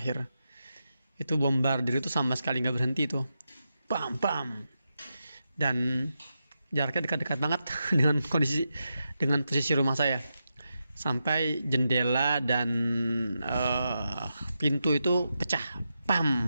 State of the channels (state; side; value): inverted; both; correlation -0.87